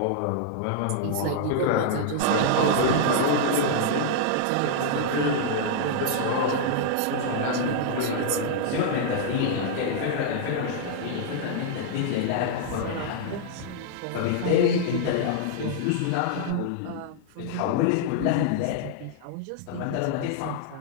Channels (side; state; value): both; different; correlation -0.01